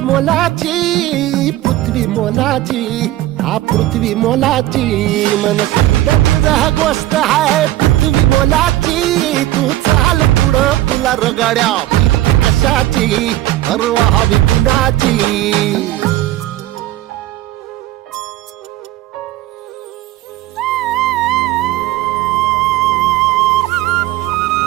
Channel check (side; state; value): left; quieter; 15.3 dB